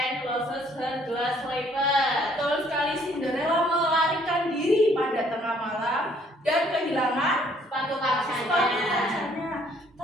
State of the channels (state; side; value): normal; both; correlation 0.63